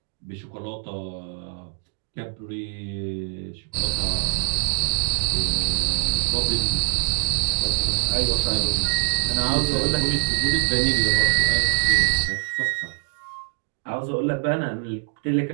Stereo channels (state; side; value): silent; left; digital silence